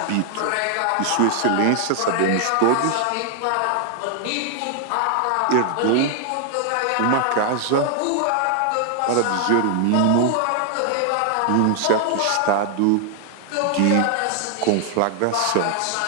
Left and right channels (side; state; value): both; different; correlation 0.00